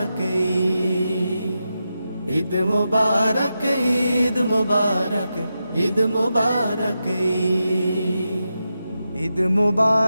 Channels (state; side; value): inverted; both; correlation -0.89